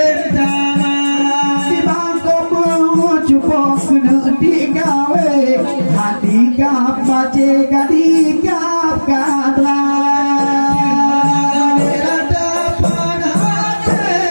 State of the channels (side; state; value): both; inverted; correlation -1.00